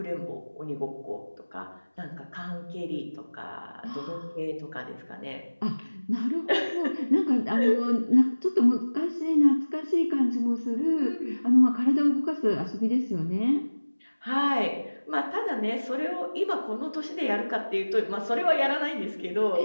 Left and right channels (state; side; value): inverted; both; correlation -1.00